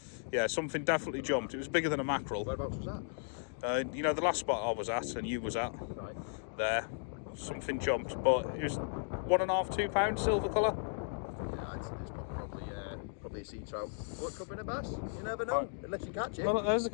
Yeah, something definitely jumped. It was bigger than a mackerel. Whereabouts was that? You know, the last spot I was at and you was at, Right. there, okay. Something jumped, but it was £1.5, £2 silver colour. Yeah, it's probably a sea trout. What, could be a bass? You never know, unless you catch it. Well, there's the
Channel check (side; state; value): right; silent; digital silence